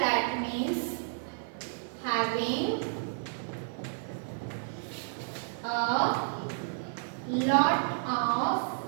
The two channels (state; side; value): silent; left; 57 dB below the other